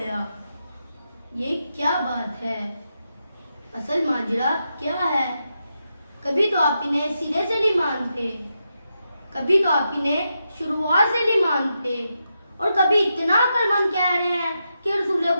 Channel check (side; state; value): both; inverted; correlation -0.86